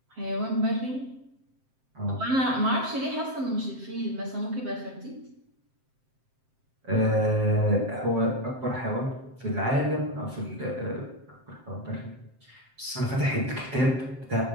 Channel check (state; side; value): late; left; 7.6 ms